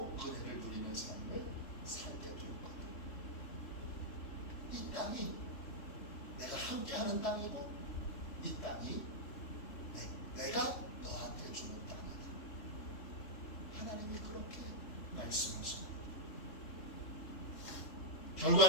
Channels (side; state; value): right; late; 3.7 ms